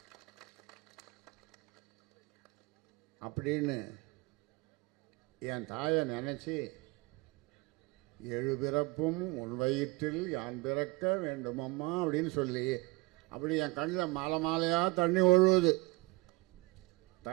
அப்படின்னு என் தாயை நினைச்சு 7 பிறப்பும் உன் வயிற்றில் யான் பிறக்க வேண்டும் அம்மா அப்படின்னு சொல்லி, அப்படி என் கண்ணில் மாலை மாலையாக தண்ணி ஒழுகுது.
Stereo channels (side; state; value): left; quieter; 23.3 dB